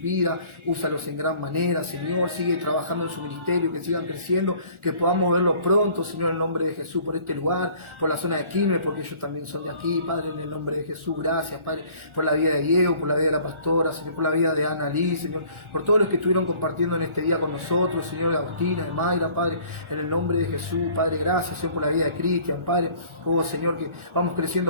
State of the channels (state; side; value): late; left; 1.4 ms